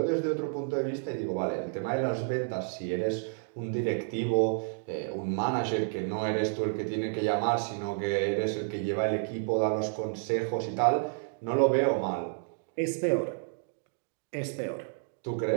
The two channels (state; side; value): silent; left; digital silence